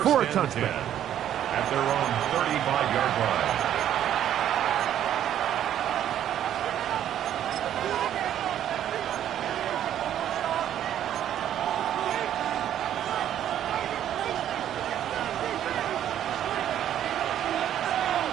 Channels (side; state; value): left; quieter; 10.8 dB